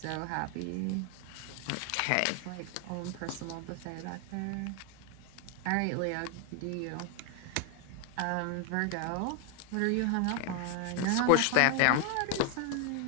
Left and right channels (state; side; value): different; both; correlation 0.01